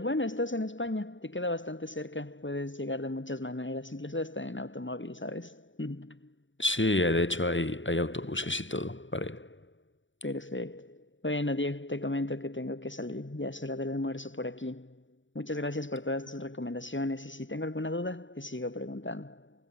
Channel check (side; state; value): right; late; 0.55 ms